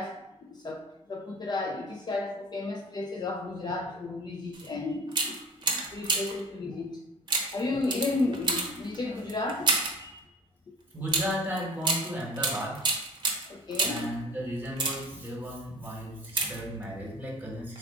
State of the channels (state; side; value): normal; both; correlation 0.38